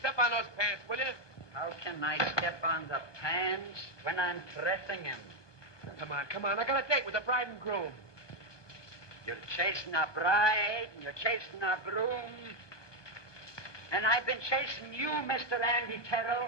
on those pants, will you? How can I step on the pants when I'm pressing him? Come on. I got a date with the bride and groom. You're chasing a bride, and you're chasing a groom. And I've been chasing you, Mr. Andy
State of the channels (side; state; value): right; late; 1.2 ms